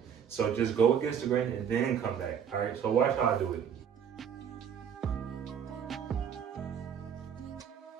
So just go against the grain and then come back, all right? So watch how I do it.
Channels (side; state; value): left; quieter; 8.1 dB